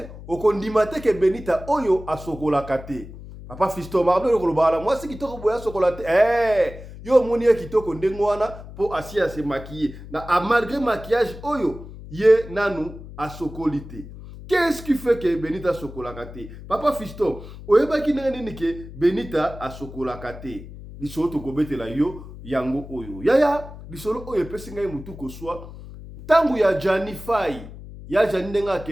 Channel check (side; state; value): left; noise; hum, 14 dB below the sound